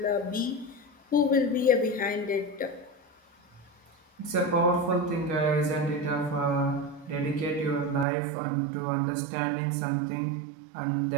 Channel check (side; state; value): left; drops out; at 8.1 s